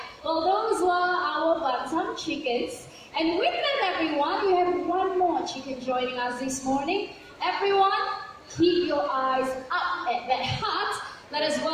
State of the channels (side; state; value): both; identical; correlation 1.00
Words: Well, those were our bantam chickens. And with them, everyone, we have one more chicken joining us this morning. Everyone, keep your eyes up at that hut. Let us